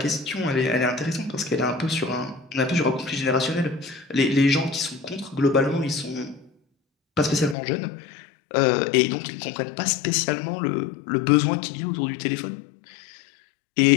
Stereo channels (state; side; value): drops out; right; at 7.6 s